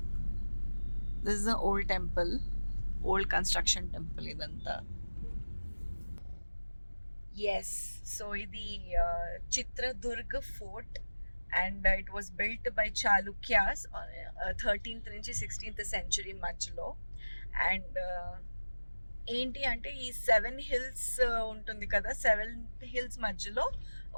this is the old temple, old construction temple ఇదంతా. ఎస్, సో ఇది Chitradurg fort and it was built by Chalukyas 13th నుంచి 16th సెంచురీ మధ్యలో. అండ్ ఏంటి అంటే ఈ 7 hills ఉంటుంది కదా, 7 hills మధ్యలో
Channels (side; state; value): both; inverted; correlation -1.00